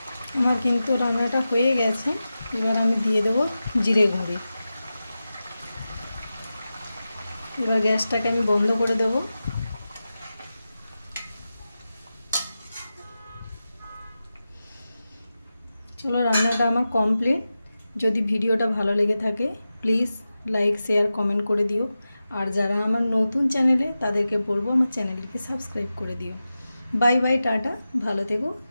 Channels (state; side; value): inverted; both; correlation -0.93